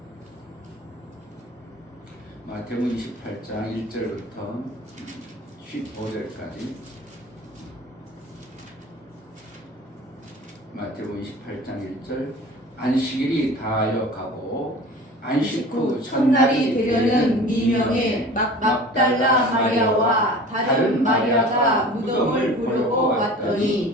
마태복음 28장 1절부터 15절까지 마태복음 28장 1절 안식일이 다하여 가고 안식 후 첫날이 되려는 미명의 막달라 마리아와 다른 마리아가 무덤을 보려고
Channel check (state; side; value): normal; both; correlation 0.40